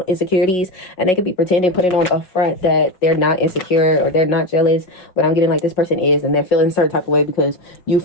insecurities, and they could be pretending, putting on a front that they're not insecure or they're not jealous, but I'm getting like this person is, and they're feeling a certain type of way because you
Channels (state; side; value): late; right; 5.5 ms